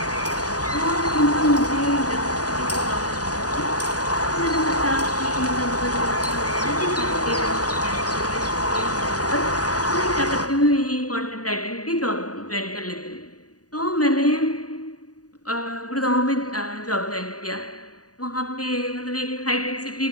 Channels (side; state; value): right; late; 0.68 ms